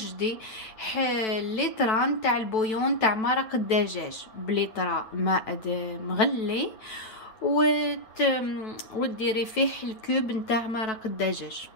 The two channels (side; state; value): right; late; 9.1 ms